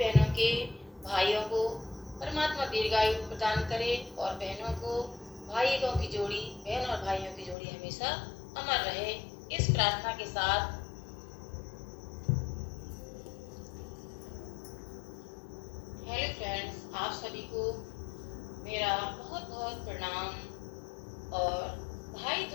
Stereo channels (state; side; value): drops out; right; at 7.6 s